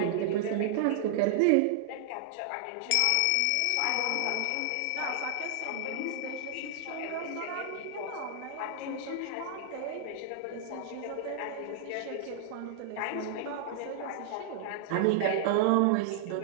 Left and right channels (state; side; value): different; both; correlation 0.00